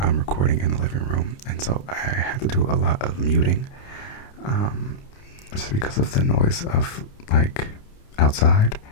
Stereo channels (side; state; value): right; late; 29 ms